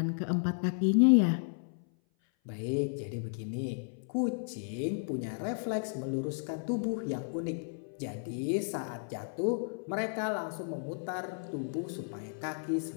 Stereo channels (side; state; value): right; silent; 55 dB below the other